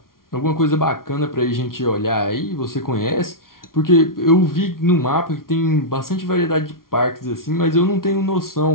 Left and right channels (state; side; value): late; right; 0.92 ms